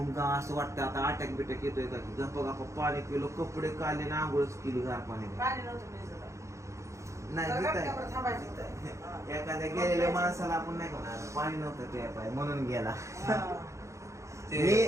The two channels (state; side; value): late; left; 0.14 ms